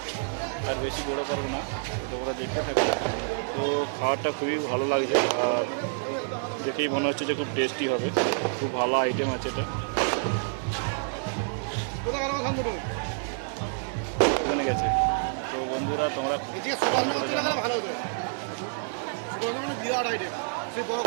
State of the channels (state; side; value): silent; left; digital silence